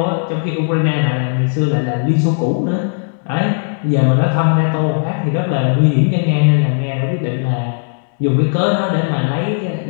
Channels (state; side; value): silent; right; digital silence